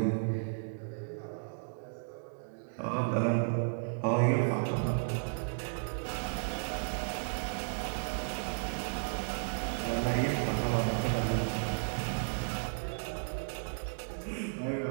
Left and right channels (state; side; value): silent; left; digital silence